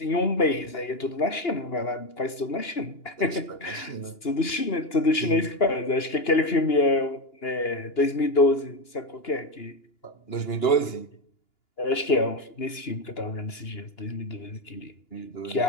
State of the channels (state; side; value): late; right; 2.9 ms